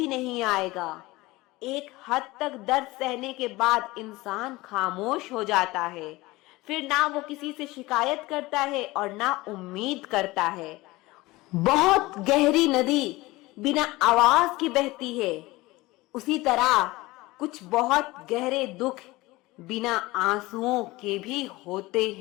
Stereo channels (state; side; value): quieter; right; 20.4 dB